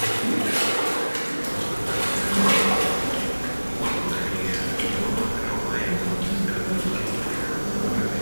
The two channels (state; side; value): inverted; both; correlation -1.00